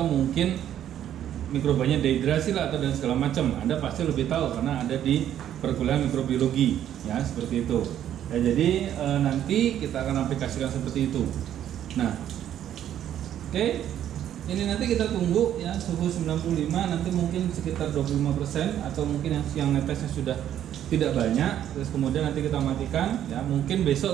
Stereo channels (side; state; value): left; quieter; 10.8 dB